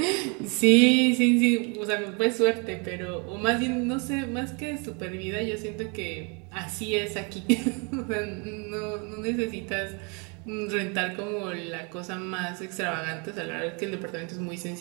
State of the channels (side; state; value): left; quieter; 33.8 dB